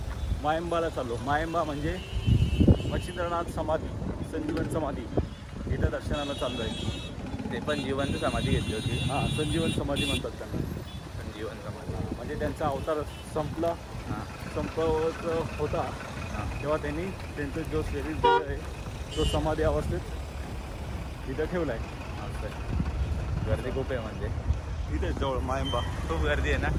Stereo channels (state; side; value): identical; both; correlation 1.00